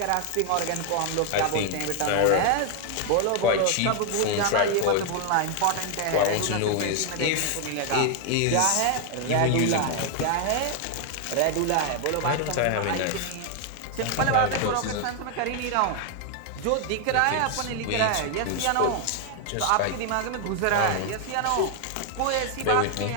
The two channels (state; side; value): different; both; correlation 0.00